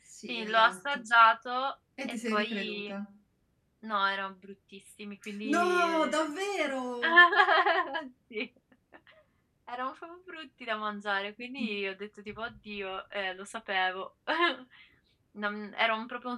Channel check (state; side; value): identical; both; correlation 1.00